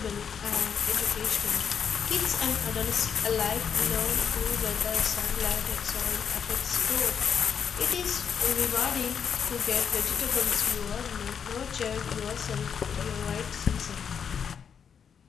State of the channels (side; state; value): right; quieter; 7.3 dB